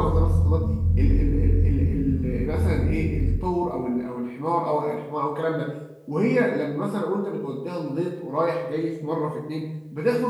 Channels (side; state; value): both; identical; correlation 1.00